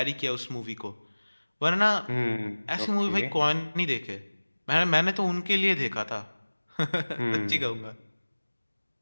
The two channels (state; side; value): inverted; both; correlation -1.00